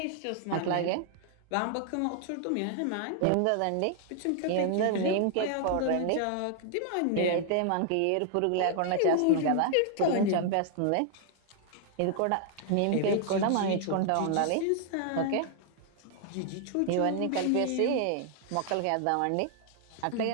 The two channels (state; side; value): different; both; correlation 0.00